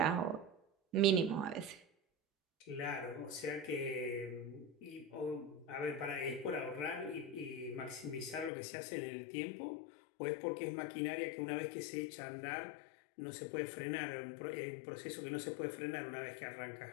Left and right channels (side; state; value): right; drops out; at 8.5 s